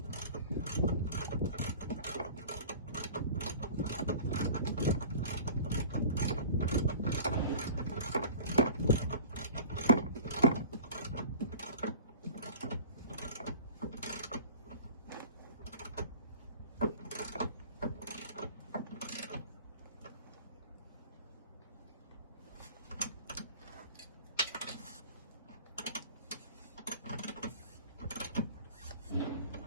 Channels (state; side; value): inverted; both; correlation -0.42